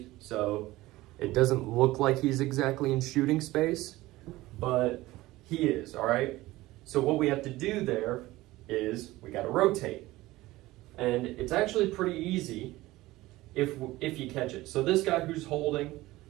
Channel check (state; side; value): quieter; left; 18.1 dB